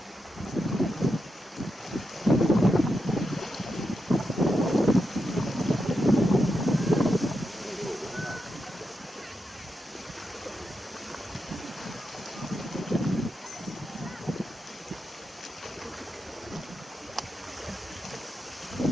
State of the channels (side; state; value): both; normal; correlation 0.86